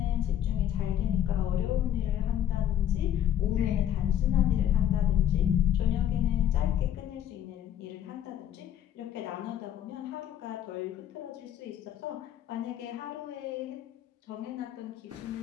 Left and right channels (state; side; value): quieter; right; 10.7 dB